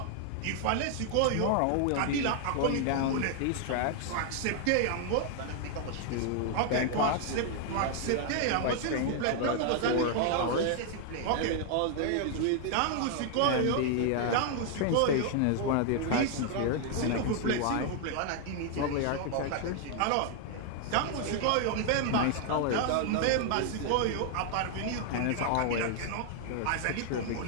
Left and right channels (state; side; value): different; both; correlation 0.00